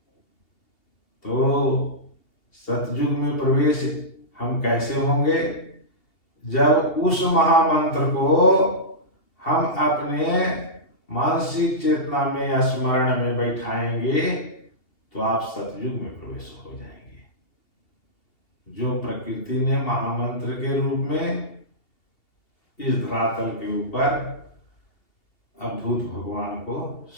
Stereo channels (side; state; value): right; late; 2.8 ms